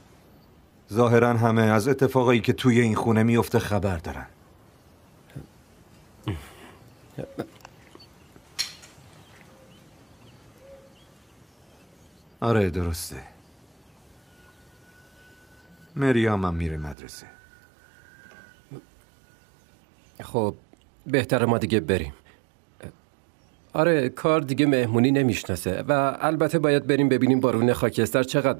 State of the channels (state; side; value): drops out; left; at 16.9 s